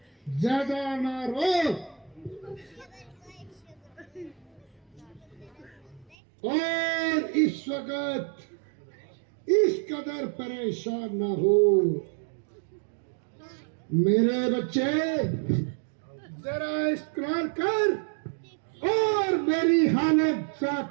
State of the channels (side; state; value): left; drops out; at 6.2 s